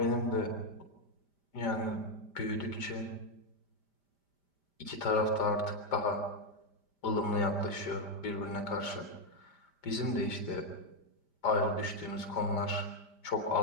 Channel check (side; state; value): right; late; 5.0 ms